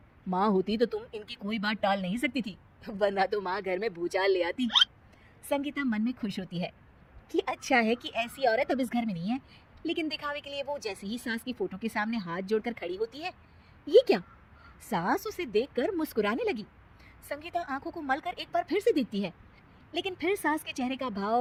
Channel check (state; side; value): identical; both; correlation 1.00